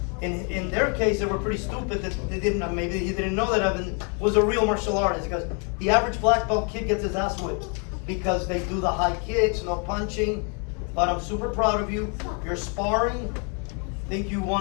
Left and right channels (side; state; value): right; quieter; 37.8 dB